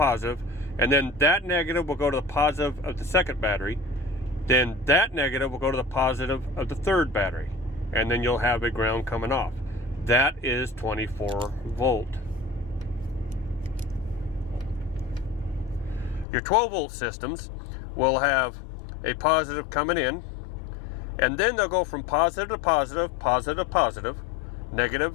and then that negative will go to the positive of the second battery. Then that negative will go to the positive of the third battery. And then you'll have a ground coming off. That is 24 volt. Your 12 volt systems will have a positive coming in, and then they'll go from positive to positive, positive to positive,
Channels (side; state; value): right; drops out; at 16.2 s